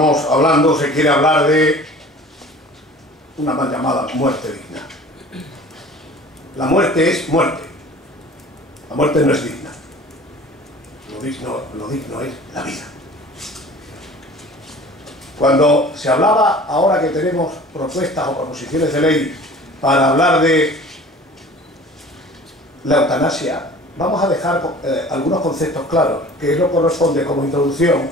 hablando, se quiere hablar de una mal llamada muerte digna. La muerte es muerte. La muerte no es digna. Lo digno es la vida. Cuando se hablaba, ahora que tenemos propuestas o proposiciones de ley para hablar de la eutanasia, vamos a dejar algunos conceptos claros, que es lo que corresponde como introducción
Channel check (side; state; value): both; normal; correlation 0.44